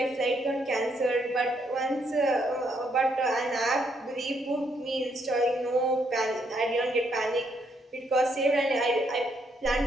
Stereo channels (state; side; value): normal; both; correlation 0.74